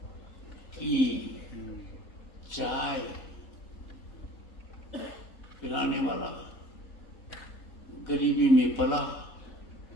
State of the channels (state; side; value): late; right; 4.2 ms